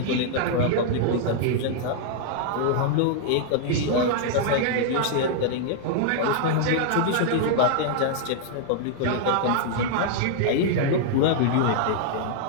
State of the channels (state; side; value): different; both; correlation -0.01